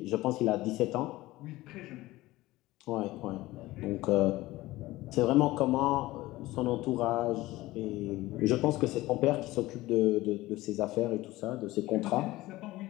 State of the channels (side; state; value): right; quieter; 18.1 dB